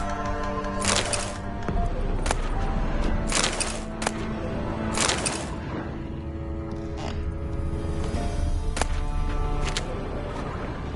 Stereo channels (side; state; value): both; identical; correlation 1.00